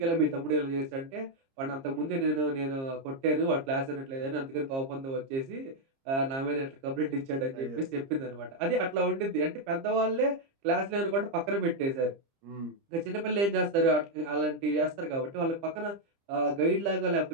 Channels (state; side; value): late; left; 30 ms